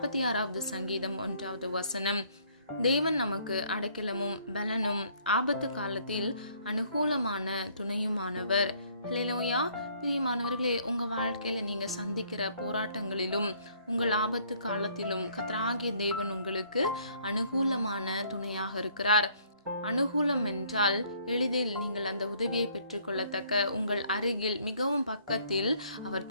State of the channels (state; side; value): inverted; both; correlation -0.62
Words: சங்கீதம் 1வது வசனம். தேவன் நமக்கு அடைக்கலமும் பலனும் ஆபத்து காலத்தில் அனுகூலமான துணையுமானவர். ஹல்லேலூயா. பிரியமானவர்களே, உங்க வாழ்க்கையில நீங்க சந்திக்கிற போராட்டங்களிலும் உங்கள் ஆபத்து காலத்திலும் கர்த்தராகிய தேவன் உங்களுக்கு அனுகூலமான துணையாக இருக்கிறார். அனுகூலம் என்றால் எளிதில் நீங்கள் அந்த உதவியை பெற்றுக்கொள்ளத்தக்க உங்கள் அருகில் மிகவும் பக்கத்தில் அவர்